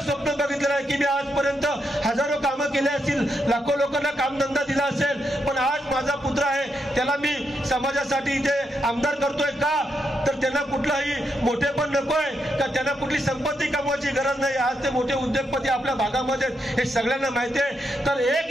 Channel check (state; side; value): normal; both; correlation 0.82